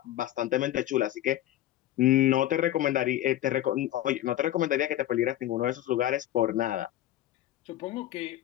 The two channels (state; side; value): quieter; right; 13.6 dB